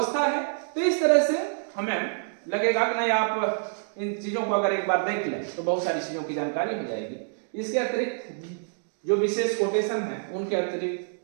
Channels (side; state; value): left; silent; digital silence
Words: है। तो इस तरह से हमें लगेगा कि नहीं, आप इन चीजों को अगर एक बार देख लें तो बहुत सारी चीजों की जानकारी हो जाएगी। इसके अतिरिक्त जो विशेष कोटेशन है उनके